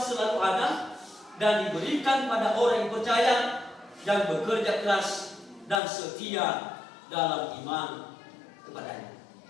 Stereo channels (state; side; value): drops out; right; at 5.8 s